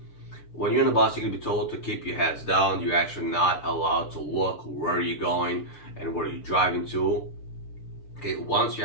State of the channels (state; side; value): late; right; 6.7 ms